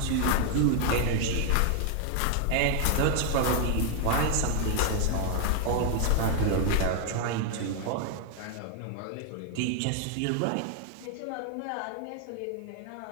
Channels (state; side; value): different; both; correlation 0.00